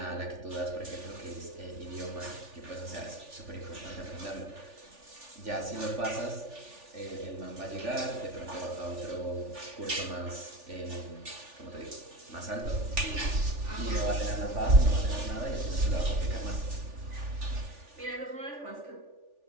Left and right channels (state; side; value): late; left; 3.4 ms